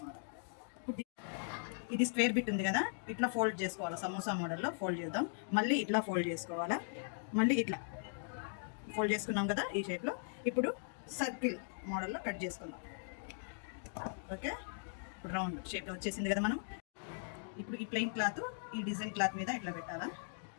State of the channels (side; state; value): right; silent; digital silence